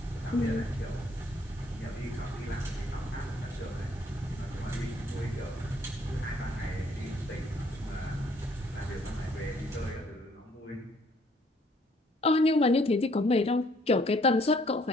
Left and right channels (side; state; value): both; normal; correlation 0.64